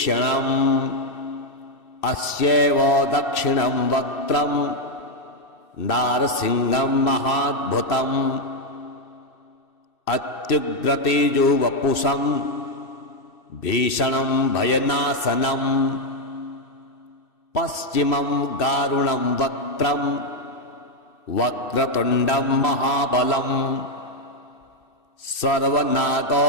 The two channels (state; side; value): late; right; 2.6 ms